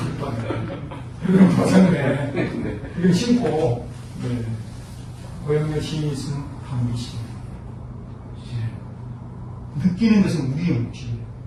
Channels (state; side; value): identical; both; correlation 1.00